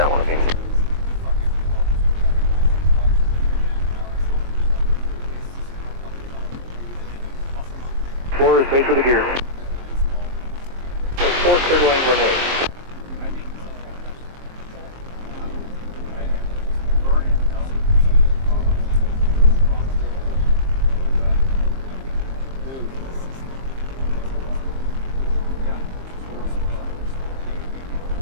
of beam. Four is base with the gear. 4 clear to land when wind.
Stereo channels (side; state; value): left; late; 23 ms